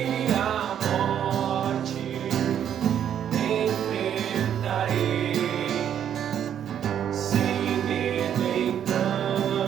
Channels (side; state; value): left; quieter; 9.5 dB